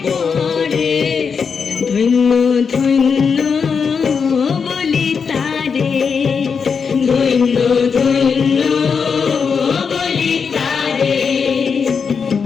পরে। ধন্য ধন্য বলি তারে, ধন্য ধন্য বলি তারে।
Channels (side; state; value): right; quieter; 5.9 dB